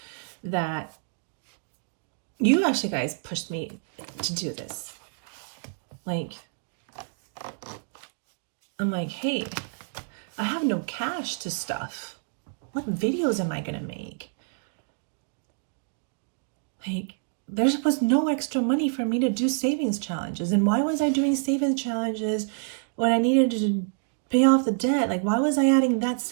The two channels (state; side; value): silent; left; digital silence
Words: that you actually guys pushed me to do this. Like, I'm like, hey, I have no cash to stuff. What videos am I going to make? Like, there was no extra money for me to do savings challenges. And why was I doing savings challenges when I needed to pay off the debt? Like, why was I adding that